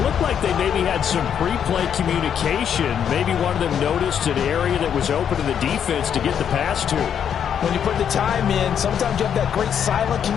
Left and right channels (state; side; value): quieter; right; 8.4 dB